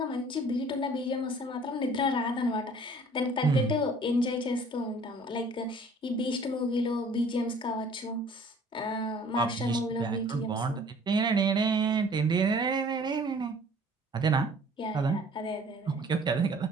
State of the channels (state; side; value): normal; both; correlation 0.52